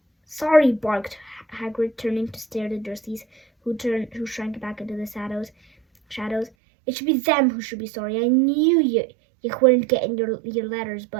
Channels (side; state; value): left; drops out; at 6.5 s